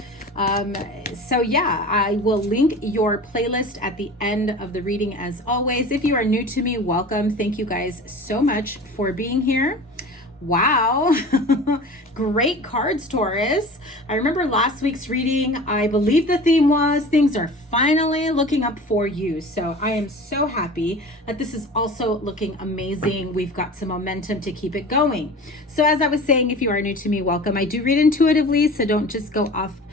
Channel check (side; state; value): both; normal; correlation 0.38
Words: So yeah, I will link your playlist at the end of the reading as always. If you are new to me, welcome. Thank you guys so much for being here. Wow. Great cards, Taurus. I remember last week's reading, I believe the theme was things are finally looking up for you. So I am so happy that this is also looking amazing. We've got some momentum to keep it going. So as I was saying, if you are new to me, welcome. I do read intuitively, so don't just go off